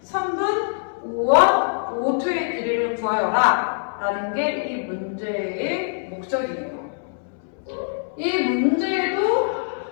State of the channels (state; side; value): silent; right; 61 dB below the other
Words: 선분 5원, 5투의 길이를 구하여라 라는 게 이 문제의 목적이에요. 이 문제에도